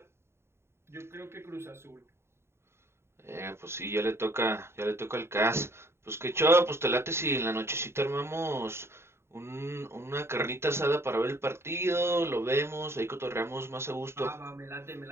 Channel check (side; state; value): left; late; 0.12 ms